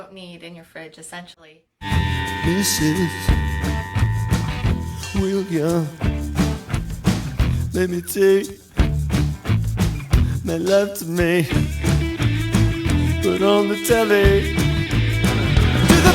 need in your fridge, essentially. Mrs. William, let me take my love to me. Put on the telly to the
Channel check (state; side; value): identical; both; correlation 1.00